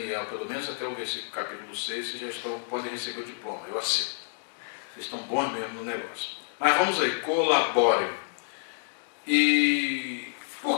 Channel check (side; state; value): right; silent; digital silence